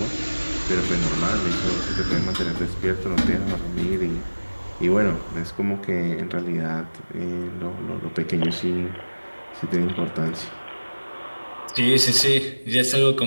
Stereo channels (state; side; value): inverted; both; correlation -1.00